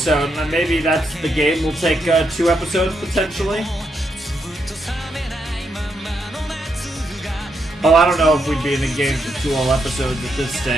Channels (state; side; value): normal; both; correlation 0.80